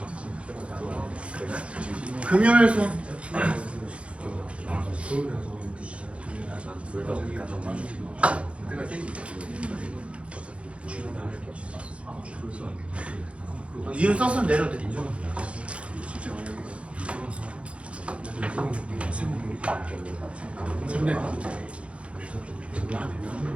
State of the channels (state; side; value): late; left; 0.061 ms